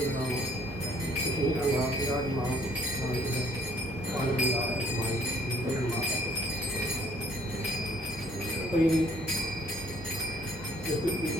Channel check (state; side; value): normal; both; correlation 0.61